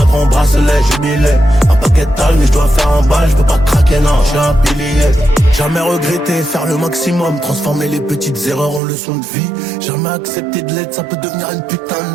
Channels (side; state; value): left; drops out; at 8.8 s